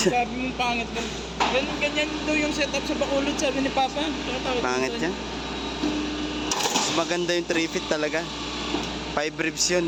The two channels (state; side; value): identical; both; correlation 1.00